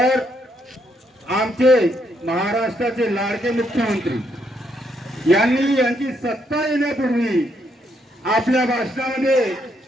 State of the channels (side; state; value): both; normal; correlation 0.75